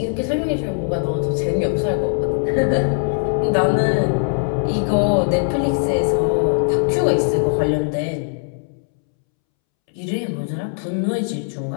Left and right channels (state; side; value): silent; right; 66 dB below the other